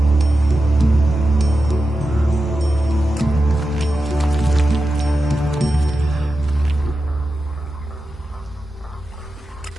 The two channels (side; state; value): both; normal; correlation 0.91